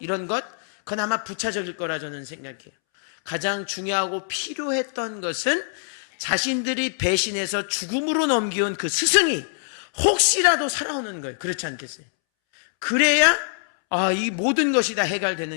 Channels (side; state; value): right; silent; 63 dB below the other